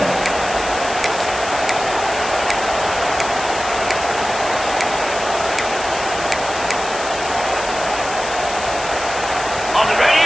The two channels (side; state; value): left; noise; hiss, 10 dB below the sound